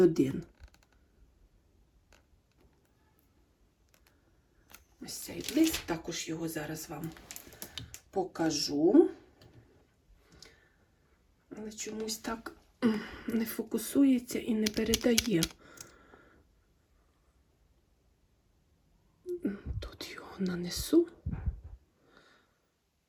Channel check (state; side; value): identical; both; correlation 1.00